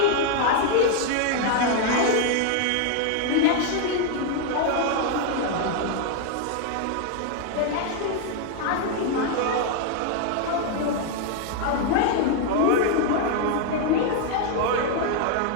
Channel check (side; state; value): both; different; correlation 0.00